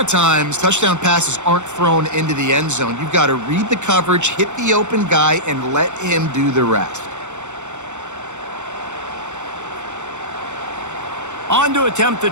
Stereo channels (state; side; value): late; left; 0.84 ms